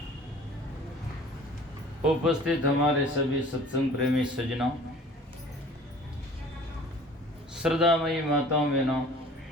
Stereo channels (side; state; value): both; normal; correlation 0.47